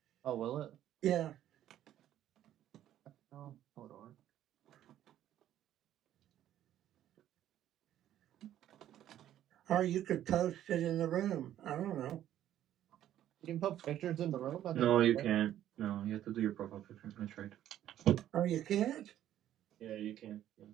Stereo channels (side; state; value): left; quieter; 11.9 dB